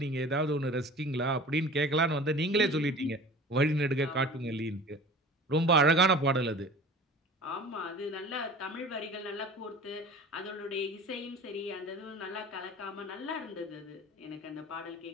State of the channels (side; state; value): both; normal; correlation 0.40